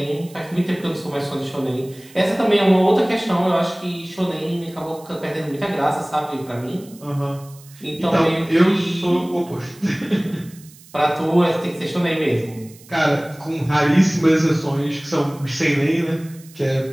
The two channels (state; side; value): noise; right; hiss, 23 dB below the sound